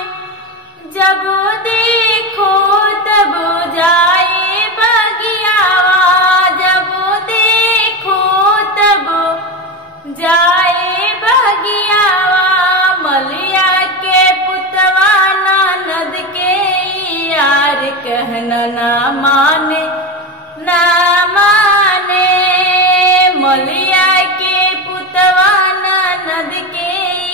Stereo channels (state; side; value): normal; both; correlation 0.19